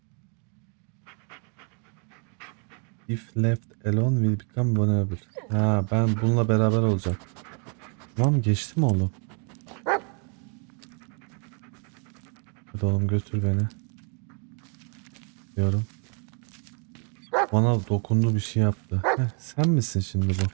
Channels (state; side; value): quieter; left; 38.8 dB